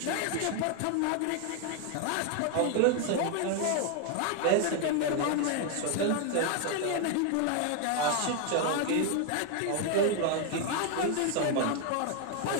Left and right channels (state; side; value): different; both; correlation 0.01